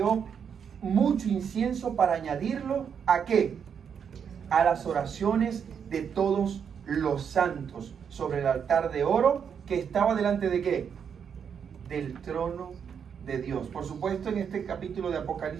mucho incienso para añadirlo ¿a qué? A las oraciones de todos los santos sobre el altar de oro que estaba delante de ¿qué? Del trono de Dios. Por supuesto, en este capítulo de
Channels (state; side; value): quieter; left; 7.3 dB